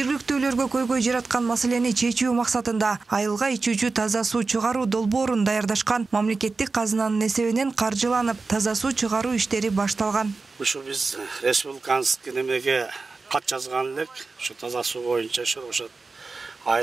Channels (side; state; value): left; quieter; 4.0 dB